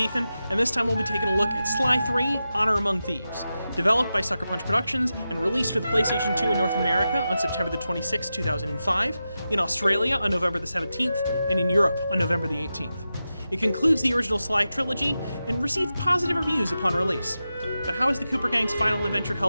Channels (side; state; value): both; inverted; correlation -0.91